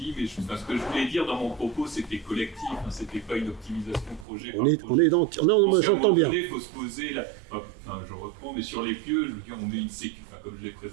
mais ce que je voulais dire dans mon propos, c'était collectif, hein, c'était pas une optimisation projet. On est dans... Non, moi j'entends bien. Il faut se poser, enfin je reprends, mais sur les pieux, je veux dire, on met une sécurité, enfin, comme je l'ai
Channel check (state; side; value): drops out; left; at 4.2 s